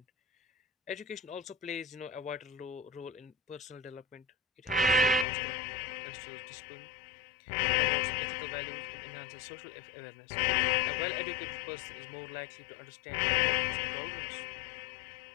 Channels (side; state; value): right; drops out; at 5.2 s